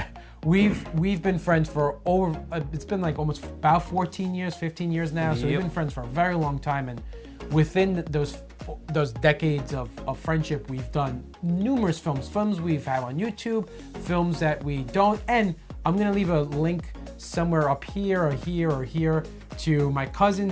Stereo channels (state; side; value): identical; both; correlation 1.00